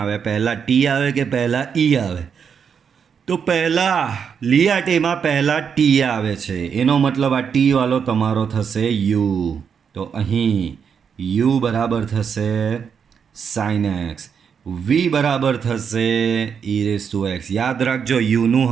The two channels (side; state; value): left; quieter; 6.9 dB